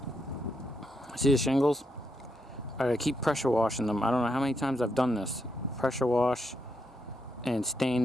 See the shingles? I keep pressure washing them. I don't know how many times I've done this. Pressure wash and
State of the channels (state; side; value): normal; both; correlation 0.80